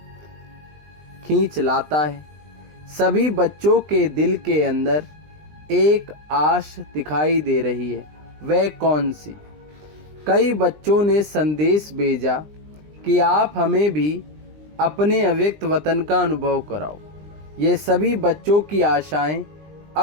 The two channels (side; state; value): left; late; 20 ms